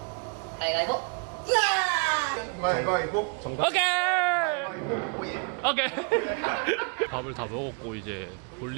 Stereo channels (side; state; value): left; quieter; 36.2 dB